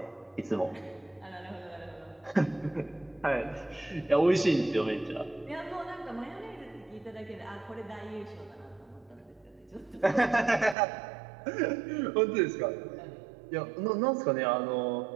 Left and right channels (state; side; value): drops out; left; at 10.8 s